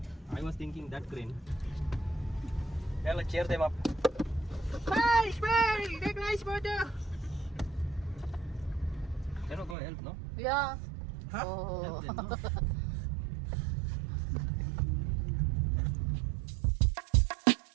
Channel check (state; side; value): drops out; left; at 9.8 s